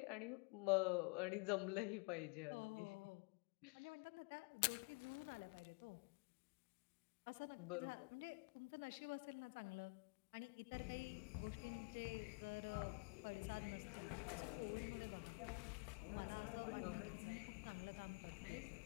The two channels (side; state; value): right; quieter; 32.2 dB